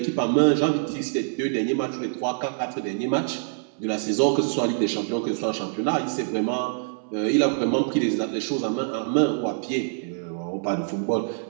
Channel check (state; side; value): silent; left; 62 dB below the other